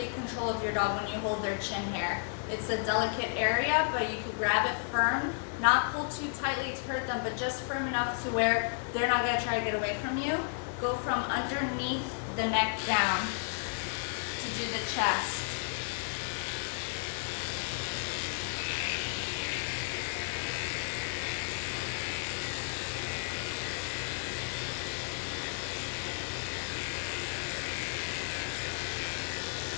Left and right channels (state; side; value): silent; right; digital silence